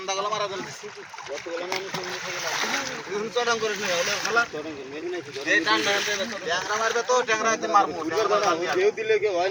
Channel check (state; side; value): identical; both; correlation 1.00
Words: দিলে কেউ হয়